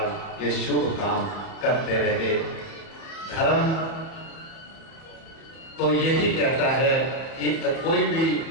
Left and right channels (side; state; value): right; late; 30 ms